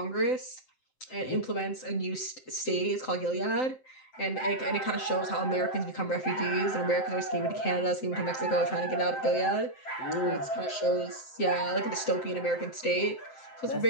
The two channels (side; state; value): right; late; 7.7 ms